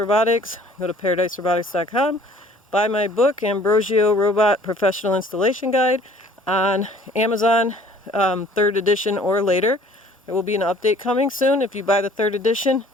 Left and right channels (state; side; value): normal; both; correlation 0.53